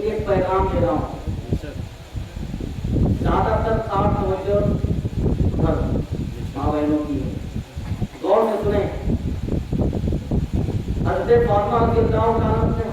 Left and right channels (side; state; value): both; identical; correlation 1.00